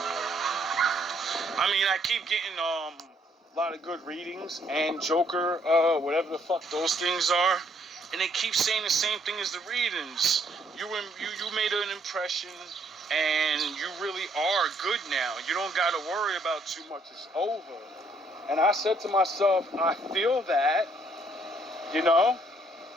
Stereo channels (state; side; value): normal; both; correlation 0.67